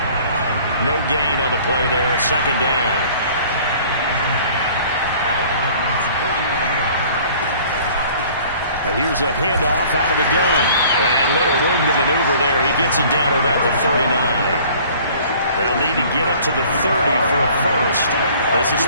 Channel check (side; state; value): both; inverted; correlation -0.51